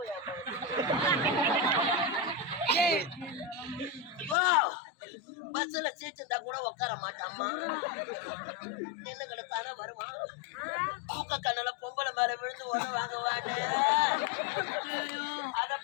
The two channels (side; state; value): right; drops out; at 4.4 s